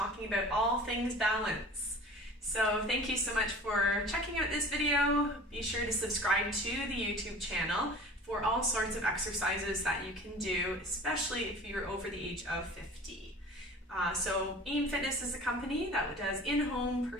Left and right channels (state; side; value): normal; both; correlation 0.42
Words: about all things balance. So thank you so much for checking out this video. Be sure to subscribe to the YouTube channel for all sorts of exercises that you can do, especially if you're over the age of 50. So AIM Fitness is a company that does in-home